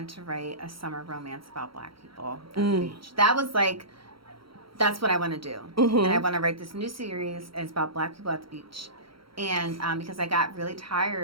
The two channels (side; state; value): left; late; 0.74 ms